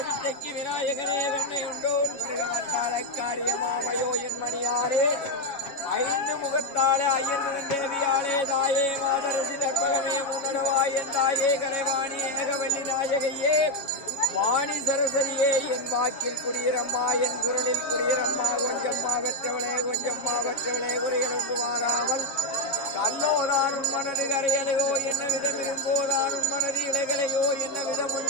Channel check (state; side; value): late; right; 7.3 ms